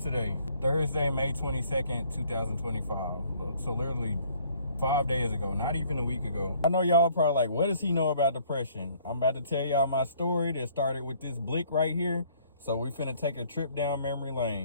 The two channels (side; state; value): both; inverted; correlation -0.60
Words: today? Thursday, May 22nd, 2025. So literally 5 days ago, not even a week ago. I know y'all probably like, what does he know about depression? I'm about to tell y'all my story that started with this blick right here. So we finna take a trip down memory